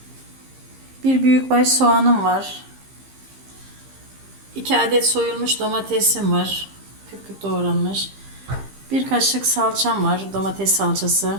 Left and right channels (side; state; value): left; late; 15 ms